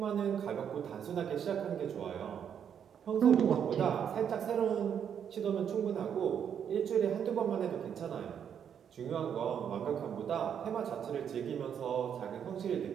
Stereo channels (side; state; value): left; quieter; 8.3 dB